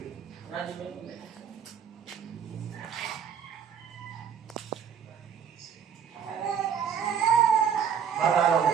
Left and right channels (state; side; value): quieter; left; 7.5 dB